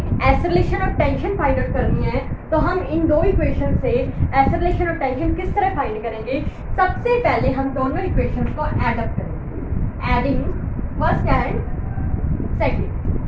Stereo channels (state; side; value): identical; both; correlation 1.00